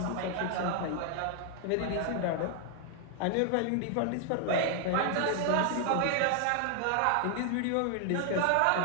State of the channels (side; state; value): both; different; correlation 0.00